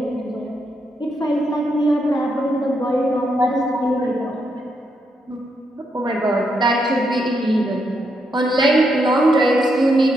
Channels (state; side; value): normal; both; correlation 0.80